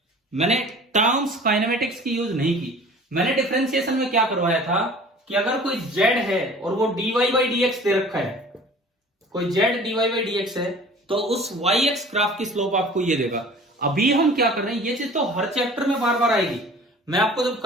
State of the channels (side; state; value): both; normal; correlation 0.45